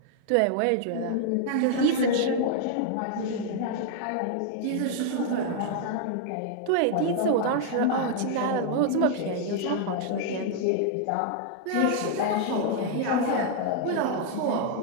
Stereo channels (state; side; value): different; both; correlation -0.01